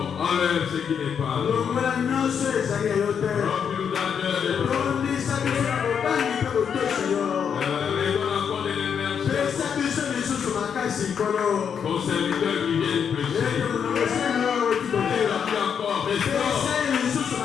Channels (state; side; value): quieter; right; 7.4 dB